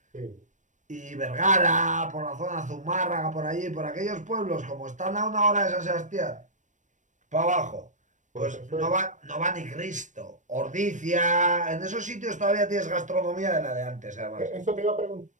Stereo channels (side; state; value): left; late; 0.36 ms